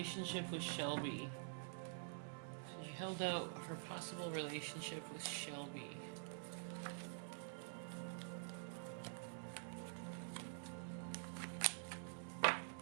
with Shelby? So you held out for a possible relationship with Shelby.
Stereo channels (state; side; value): silent; left; digital silence